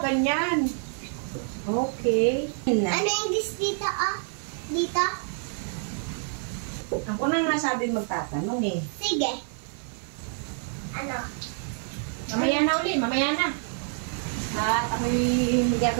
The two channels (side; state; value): left; silent; 60 dB below the other